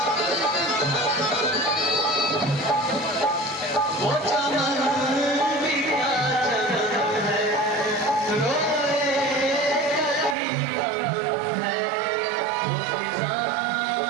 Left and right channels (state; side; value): drops out; left; at 10.4 s